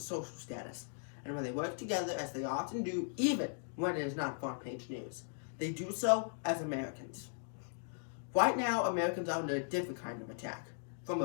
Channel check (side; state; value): right; silent; digital silence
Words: social status. And when they work together, as they often do, even when it is not front-page news, they do so as Americans. Right now, Americans are under a different kind of attack, from